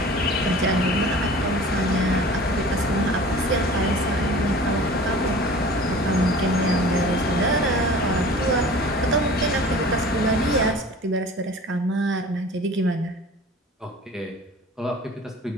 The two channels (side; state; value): both; normal; correlation 0.42